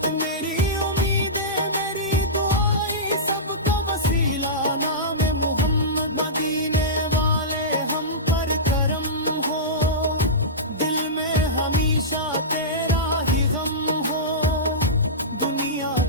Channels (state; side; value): normal; both; correlation -0.17